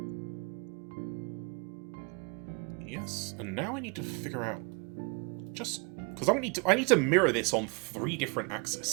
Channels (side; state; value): left; quieter; 32.6 dB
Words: Yes, and now I need to figure out just because I need to mirror this on 3 different